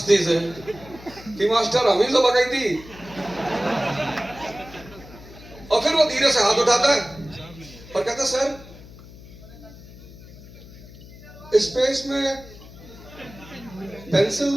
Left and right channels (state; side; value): noise; left; hum, 18 dB below the sound